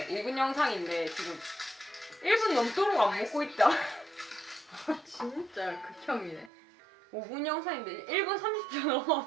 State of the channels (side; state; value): left; drops out; at 6.5 s